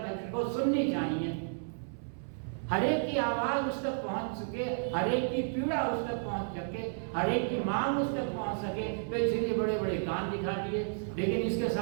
को सुननी चाहिए। हर एक की आवाज उस तक पहुंच सके, हर एक की पीड़ा उस तक पहुंच सके, हर एक की मांग उस तक पहुंच सके। तो इसलिए बड़े बड़े कान दिखा दिए, लेकिन इसके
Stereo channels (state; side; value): silent; left; 56 dB below the other